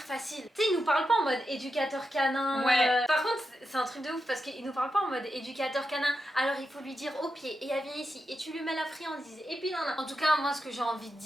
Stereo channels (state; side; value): normal; both; correlation 0.87